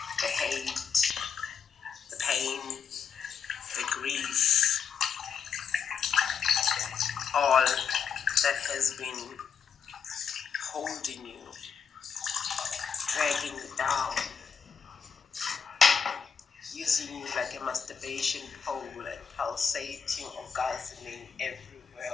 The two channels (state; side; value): quieter; right; 6.8 dB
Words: The hate, the pain, the grief, all that has been holding you, dragging you down, using you like a masturbation pole and pulsating, orgasming